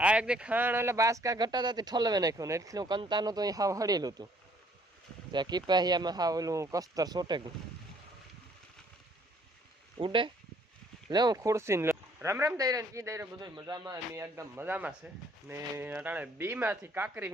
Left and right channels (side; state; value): both; normal; correlation 0.62